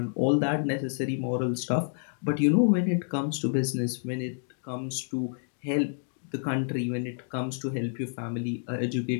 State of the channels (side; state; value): right; silent; digital silence